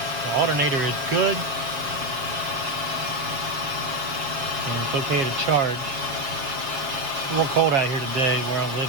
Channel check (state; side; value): late; left; 7.4 ms